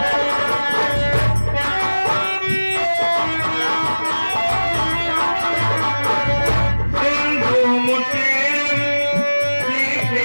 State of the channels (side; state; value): both; inverted; correlation -1.00